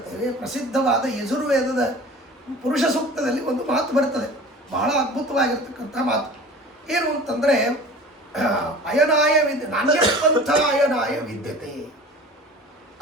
ಪ್ರಸಿದ್ಧವಾದ ಯಜುರ್ವೇದದ ಪುರುಷ ಸೂಕ್ತದಲ್ಲಿ ಒಂದು ಮಾತು ಬರ್ತದೆ, ಬಹಳ ಅದ್ಭುತವಾಗಿರ್ತಕ್ಕಂಥ ಮಾತು. ಏನು ಅಂತಂದರೆ ಅಯನಾಯ ನಾಣ್ಯಪಂಥ ಅಯನಾಯ ವಿದ್ಯತೆ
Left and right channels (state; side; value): normal; both; correlation 0.41